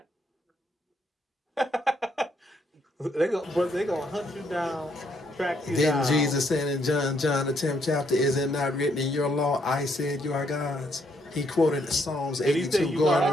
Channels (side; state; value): both; normal; correlation 0.73